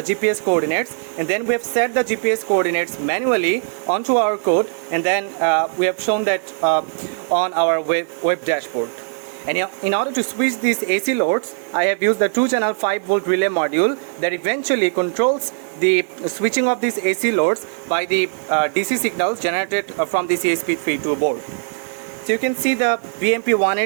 GPS coordinates, and then we have set the GPS coordinates manually onto our code, and then we have shown that on our web dashboard. And in order to switch these AC loads, I have used the 2-channel 5-volt relay module that eventually controls the switching of these AC loads by the DC signals generated from this ESP32 board. So you can see the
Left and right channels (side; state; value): left; silent; 66 dB below the other